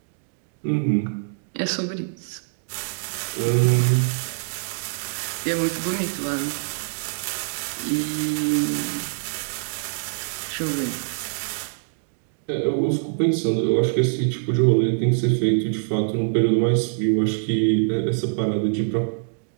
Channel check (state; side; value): silent; left; digital silence